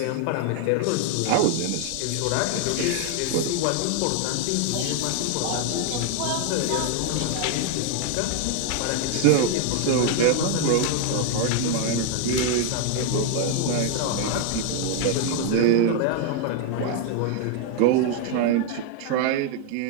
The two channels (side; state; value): both; different; correlation 0.00